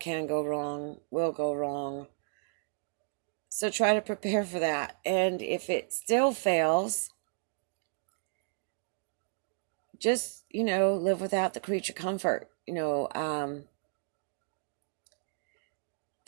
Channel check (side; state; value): left; silent; digital silence